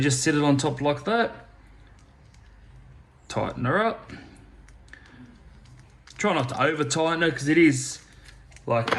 just sit it on top like that, tighten her up. Try not to over tighten it, because it is like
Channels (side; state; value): both; identical; correlation 1.00